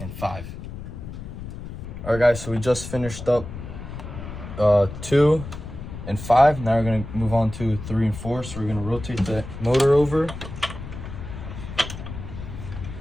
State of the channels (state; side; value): noise; left; rumble, 10 dB below the sound